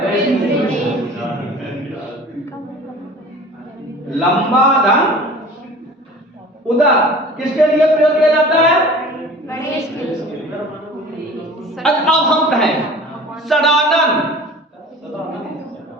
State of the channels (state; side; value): normal; both; correlation 0.42